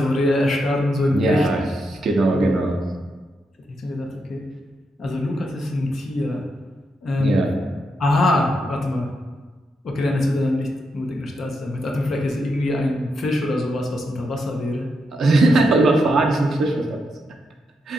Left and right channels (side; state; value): both; normal; correlation 0.83